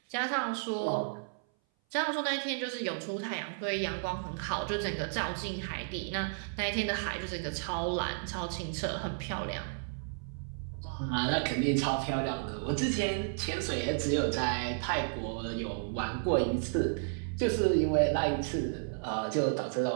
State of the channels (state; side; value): silent; left; 56 dB below the other